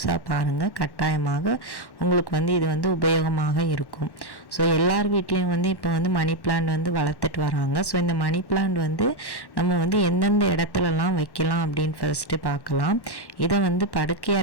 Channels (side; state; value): right; late; 1.1 ms